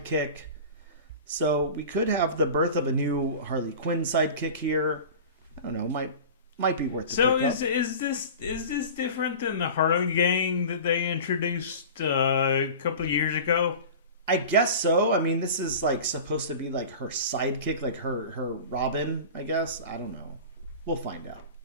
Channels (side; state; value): both; inverted; correlation -0.35